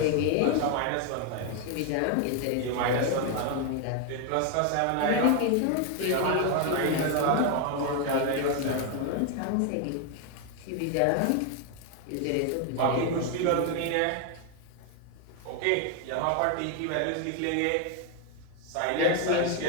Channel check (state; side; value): different; both; correlation 0.01